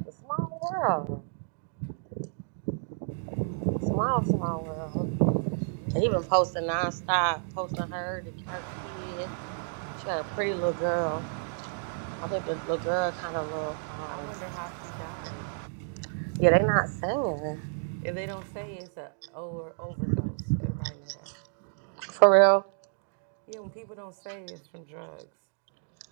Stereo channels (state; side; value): silent; left; digital silence